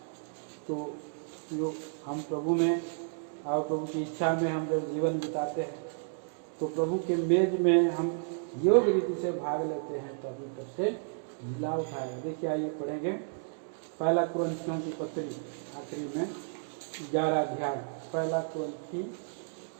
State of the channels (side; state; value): left; silent; digital silence